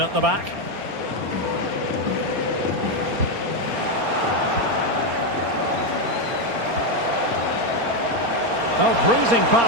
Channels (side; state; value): left; late; 4.3 ms